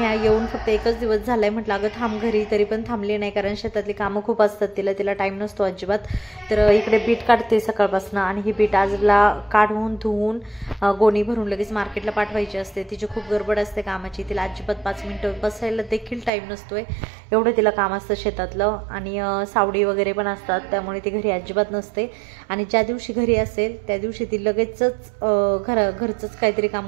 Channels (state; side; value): drops out; left; at 16.3 s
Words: येऊन फक्त एकच दिवस झाला आहे, म्हटलं अगं थांब घरी, तरी पण थांबली नाही कारण शेतातली कामं खूप असतात, तिला टाईम नसतो अजिबात. तर इकडे बीट काढते सकाळपासून आणि ही बीट आजला काढून धुवून गोणी भरून लगेच मार्केटला पाठवायची असते. तिची खूप गडबड असते कामाची, तिला अजिबात 5 मिनिटं बसायला देखील टाईम नसतोय, एवढं तिला काम असतं शेतातलं. आणि सावडी वगैरे पण असतात त्यामुळे ती घरी अजिबात नसते. आणि ज्या दिवशी घरी असेल त्या दिवशी ती लगेचच घरचंच काहीतरी